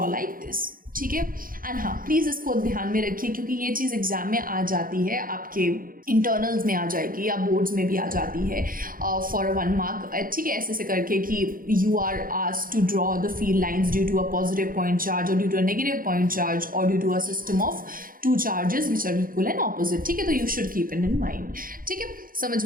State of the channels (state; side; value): late; left; 0.41 ms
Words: like this. ठीक है। एंड हाँ, प्लीज़ इसको ध्यान में रखिए क्योंकि ये चीज़ एग्जाम में आ जाती है, आपके इंटरनल्स में आ जाएगी या बोर्ड्स में भी आ जाती है फॉर 1 मार्क, ठीक है, ऐसे करके कि you are asked to draw the field lines due to a positive point charge और due to a negative point charge और due to a system of 2 charges which are equal and opposite, ठीक है। तो you should keep it in mind, ठीक है। समझ